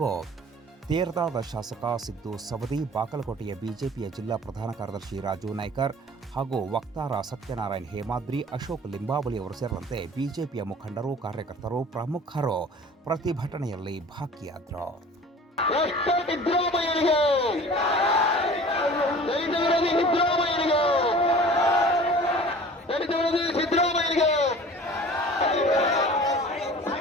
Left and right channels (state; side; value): normal; both; correlation 0.44